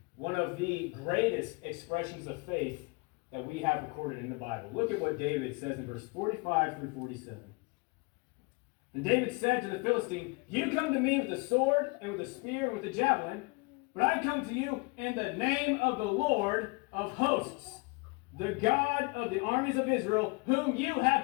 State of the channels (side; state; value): right; quieter; 29.4 dB